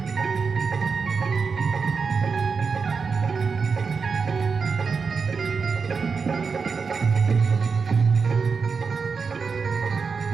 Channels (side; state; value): left; quieter; 5.2 dB